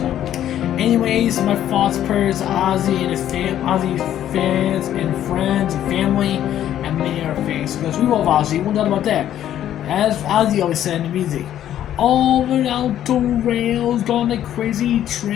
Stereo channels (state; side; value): quieter; right; 11.4 dB